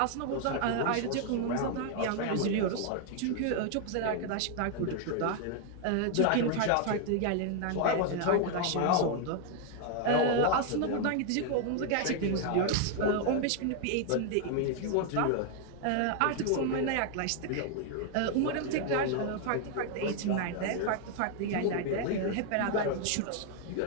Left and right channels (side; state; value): both; different; correlation 0.00